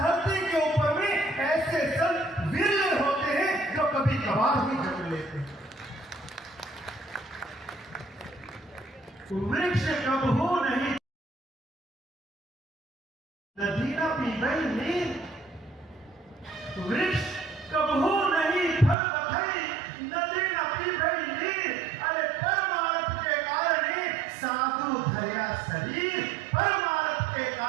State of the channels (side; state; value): left; drops out; at 18.9 s